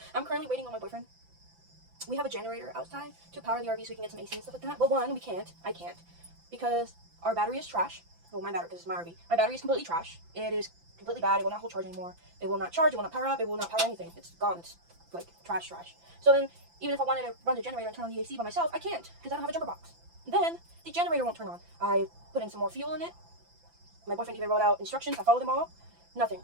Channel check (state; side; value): late; left; 5.9 ms